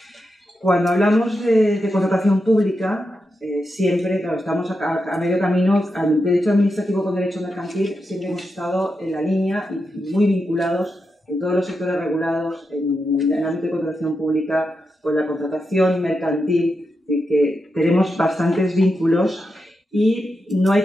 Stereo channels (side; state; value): both; normal; correlation 0.87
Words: Cuando hablamos de contratación pública, Siempre, claro, estamos a medio camino. Al derecho administrativo con derecho mercantil siempre hemos estado en la línea y muy vinculados en todos los sectores regulados, en el ámbito de contratación pública, con la contratación mercantil, que tenemos bastantes vínculos. Y no hay